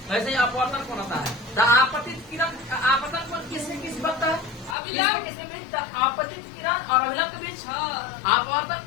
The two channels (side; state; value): right; drops out; at 4.8 s